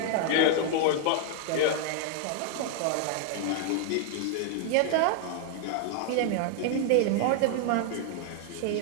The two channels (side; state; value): both; different; correlation 0.00